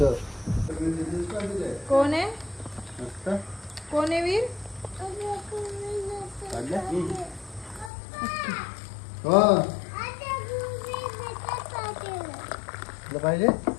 कोण आहे कोण आहे वीर? पाहिजे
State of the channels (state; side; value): drops out; right; at 7.9 s